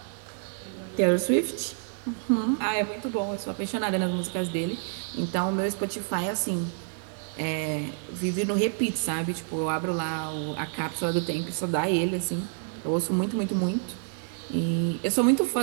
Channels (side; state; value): left; silent; 59 dB below the other